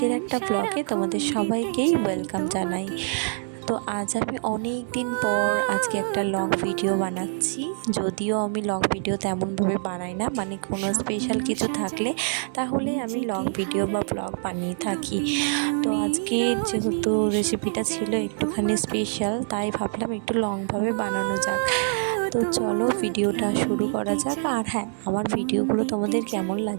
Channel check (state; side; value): silent; left; 62 dB below the other